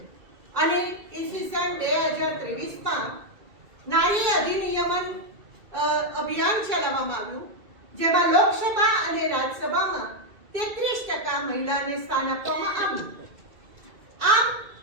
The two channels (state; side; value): late; left; 2.3 ms